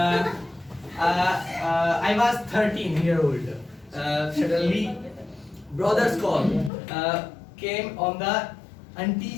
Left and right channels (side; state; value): right; drops out; at 6.7 s